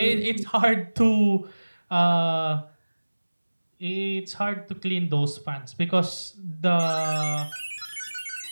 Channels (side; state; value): both; inverted; correlation -1.00